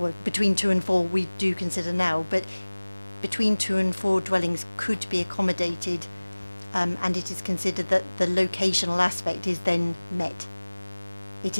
between 2 and 4 we do consider now, but between 2 and 4 dwellings could be accommodated, and it is considered that the locational aspect is then met. It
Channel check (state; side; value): inverted; both; correlation -1.00